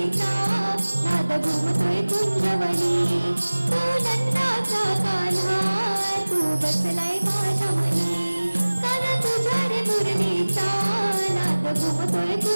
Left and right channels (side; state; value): both; inverted; correlation -1.00